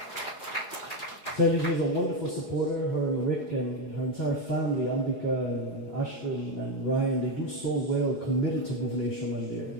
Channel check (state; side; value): late; right; 4.7 ms